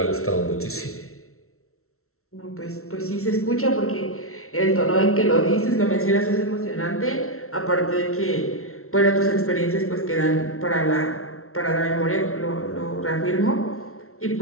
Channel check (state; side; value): late; right; 0.63 ms